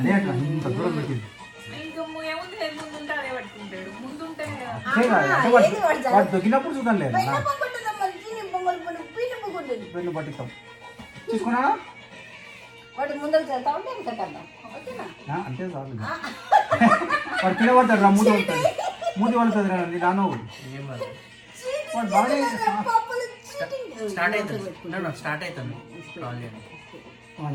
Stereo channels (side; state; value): both; identical; correlation 1.00